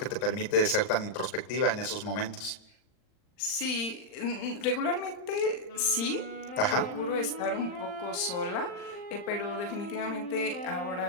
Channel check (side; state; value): right; late; 39 ms